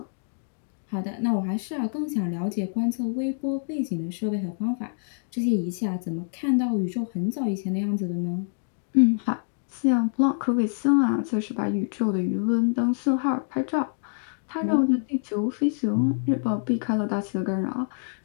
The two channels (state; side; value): silent; right; digital silence